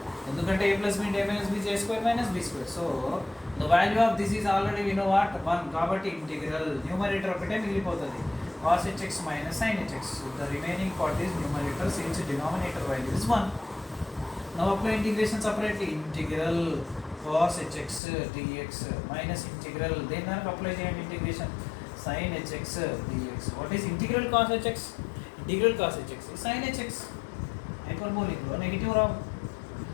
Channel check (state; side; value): drops out; right; at 18.0 s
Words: ఎందుకంటే a plus b into a minus b is a square minus b square. So the value of this is already we know what? 1. కాబట్టి integral numerator ఒకటే మిగిలిపోతుంది. Cos hx minus sin hx. So the remaining part is numerator since denominator value is 1. Now apply integration separately. Integral cos hx dx minus integral then apply చేయండి integration sin hx dx. What is integral cos hx? Integral cos hx is sin hx. Hyperbolic లో negative Rao.